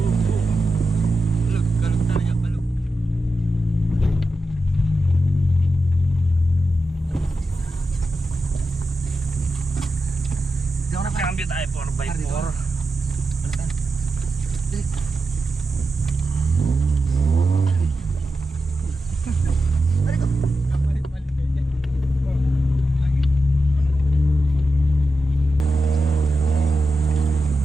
Kalog talaga, kalog. Cambio tayo 4x4.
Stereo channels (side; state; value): both; normal; correlation 0.90